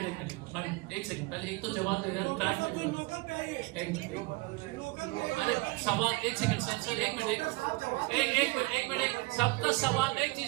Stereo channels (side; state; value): left; quieter; 24.9 dB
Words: एक सेकंड, पहले एक तो जवाब दे रहा, एक मिनट, अरे सवाल, एक सेकंड सर, एक मिनट, सबका सवाल एक